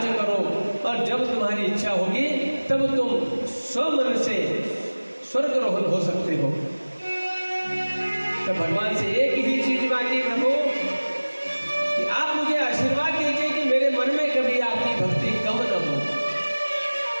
करो, और जब तुम्हारी इच्छा होगी तब तुम स्वमन से स्वर्गारोहण हो सकते हो। तो भगवान से एक ही चीज मांगी, प्रभु कि आप मुझे आशीर्वाद दीजिए कि मेरे मन में कभी आपकी भक्ति कम न हो।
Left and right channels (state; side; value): inverted; both; correlation -1.00